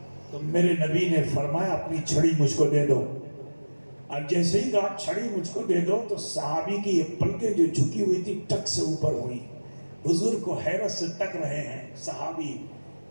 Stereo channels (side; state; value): both; inverted; correlation -1.00